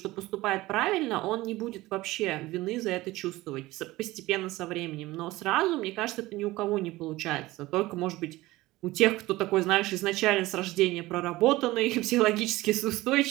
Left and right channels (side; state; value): left; quieter; 18.6 dB